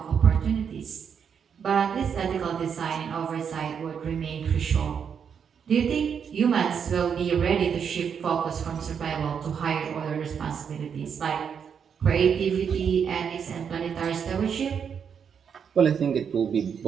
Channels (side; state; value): left; quieter; 7.2 dB